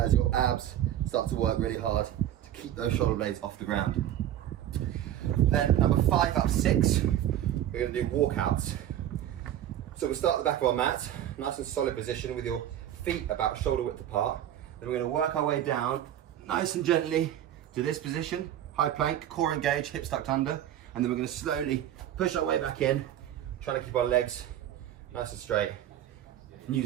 your abs start to work really hard to keep those shoulder blades off the ground. Then number 5 up 6, we're gonna do walkouts. So we'll start at the back of our mat, nice and solid position with your feet about shoulder width apart. Then we're gonna work our way down nice and gently to this position, high plank, core engaged, hips tucked under, and then we're going to slowly push our way back in, trying to keep our legs nice and straight, and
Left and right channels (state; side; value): quieter; left; 11.6 dB